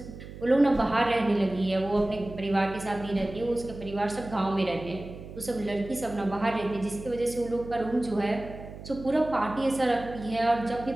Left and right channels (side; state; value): right; noise; hum, 13 dB below the sound